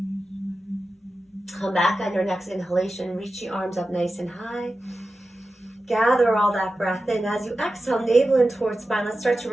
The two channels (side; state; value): both; normal; correlation 0.93